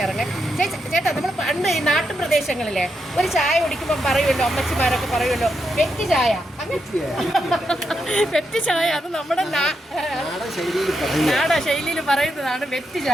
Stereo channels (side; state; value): both; normal; correlation 0.83